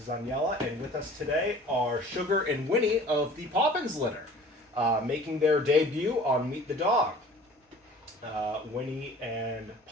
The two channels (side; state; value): both; normal; correlation 0.47